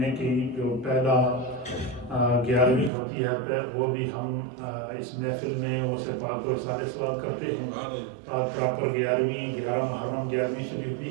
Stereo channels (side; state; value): left; drops out; at 2.9 s